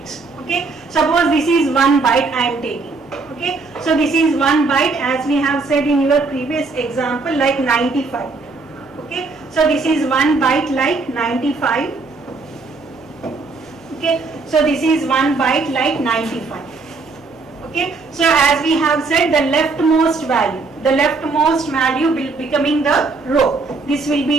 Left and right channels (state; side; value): quieter; left; 4.0 dB